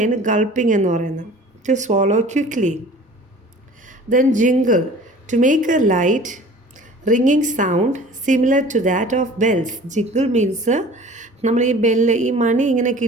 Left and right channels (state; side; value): normal; both; correlation 0.45